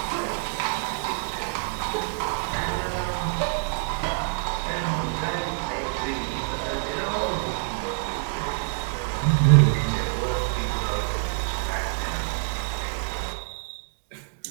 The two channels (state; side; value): silent; left; 61 dB below the other